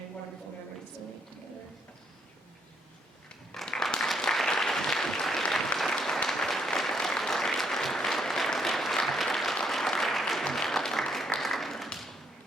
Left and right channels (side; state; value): both; normal; correlation 0.73